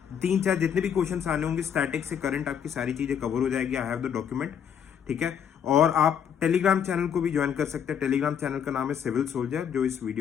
3-4 जितने भी क्वेश्चन आने होंगे, स्टैटिक से करंट, आपकी सारी चीजें कवर हो जाएगी। आई हैव द डॉक्यूमेंट, ठीक है। और आप टेलीग्राम चैनल को भी ज्वाइन कर सकते हैं। टेलीग्राम चैनल का नाम है सिविल सोल्जर, जो इस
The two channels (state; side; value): quieter; right; 8.2 dB